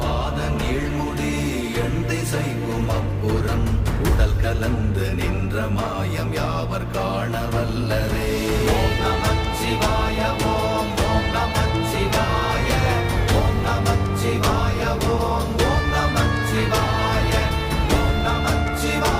நீழ்முடி எண் திசைக்கும் அப்புறம் உடல் கலந்து நின்ற மாயம் யாவர் காண வல்லரே. ஓம் நமச்சிவாய ஓம் ஓம் நமச்சிவாய ஓம் நமச்சிவாய ஓம் ஓம் நமச்சிவாய ஓம்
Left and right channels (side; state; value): both; identical; correlation 1.00